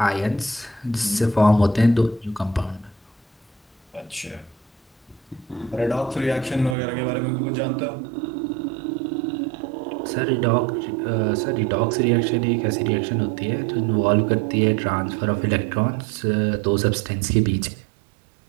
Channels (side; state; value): left; drops out; at 6.8 s